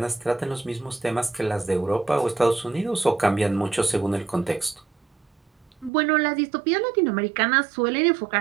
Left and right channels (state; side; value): drops out; left; at 5.9 s